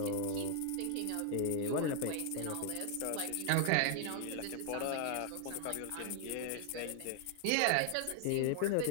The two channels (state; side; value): different; both; correlation 0.00